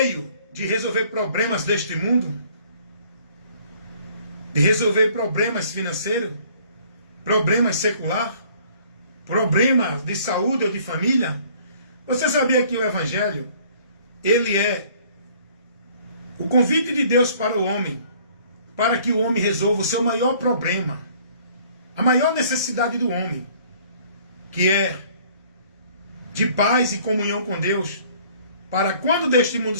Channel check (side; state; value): both; inverted; correlation -0.56